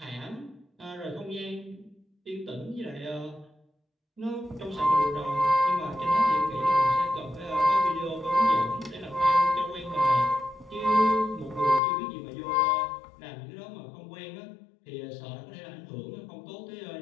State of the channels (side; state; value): right; drops out; at 11.8 s